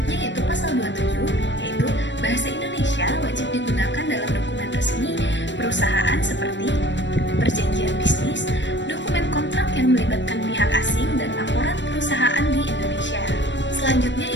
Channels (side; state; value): right; late; 0.53 ms